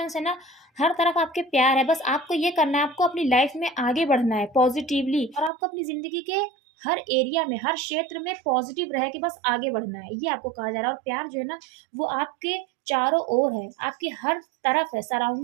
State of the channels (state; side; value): drops out; left; at 5.5 s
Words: है ना, हर तरफ आपके प्यार है। बस आपको ये करना है, आपको अपनी लाइफ में आगे बढ़ना है पॉजिटिवली, और आपको अपनी ज़िंदगी के हर एरिया में, हर क्षेत्र में पॉजिटिव रह के बस आगे बढ़ना है, ये आपको कहा जा रहा है। और प्यार जो है ना, वो आपके चारों ओर है, आपकी हर तरफ है,